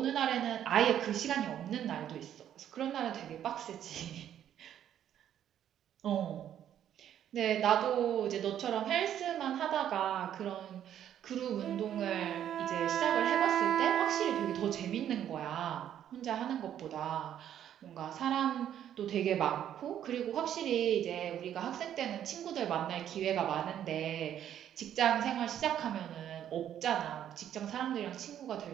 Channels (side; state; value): left; quieter; 10.4 dB